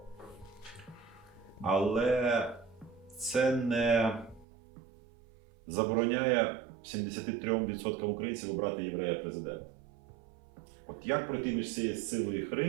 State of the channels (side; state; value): left; drops out; at 4.5 s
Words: Але це не забороняє 73% українців обрати єврея президента. От як пройти між цією силою і